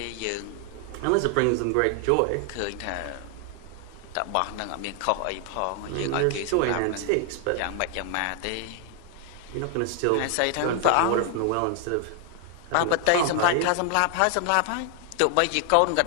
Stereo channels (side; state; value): both; different; correlation 0.00